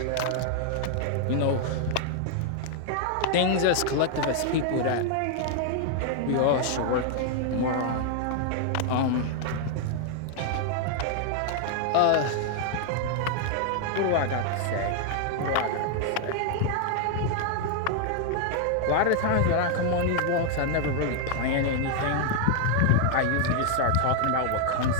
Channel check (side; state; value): both; different; correlation 0.00